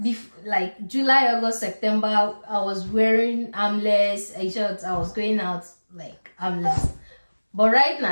Like July, August, September, I was wearing armless shorts. I was going out like armless. But right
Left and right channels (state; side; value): inverted; both; correlation -1.00